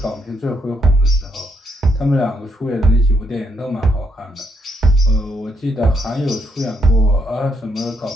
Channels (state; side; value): normal; both; correlation 0.75